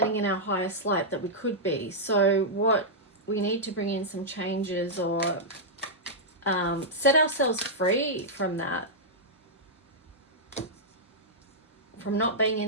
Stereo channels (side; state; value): both; normal; correlation -0.09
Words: in our highest light that we could be. So what we need to bring in some changes, or set ourselves free from that, from not being